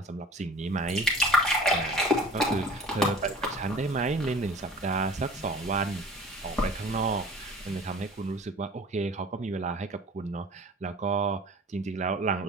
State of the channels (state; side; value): normal; both; correlation 0.43